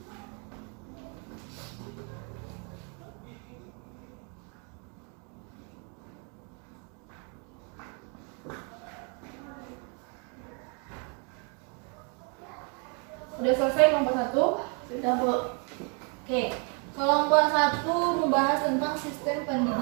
Udah selesai kelompok 1? Sudah, Bu. Oke, kelompok 1 membahas tentang sistem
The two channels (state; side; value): quieter; left; 37.0 dB